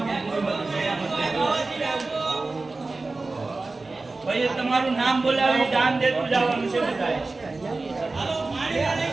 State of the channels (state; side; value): quieter; left; 3.5 dB